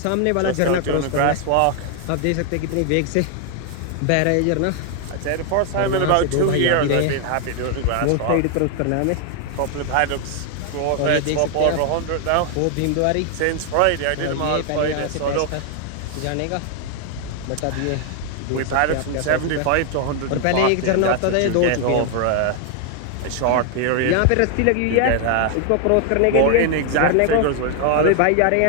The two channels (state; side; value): different; both; correlation 0.00